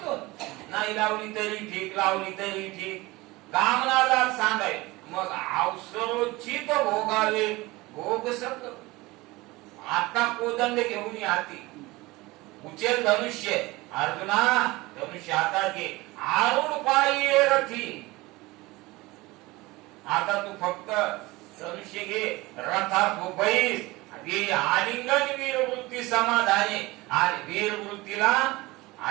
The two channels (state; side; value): quieter; left; 21.2 dB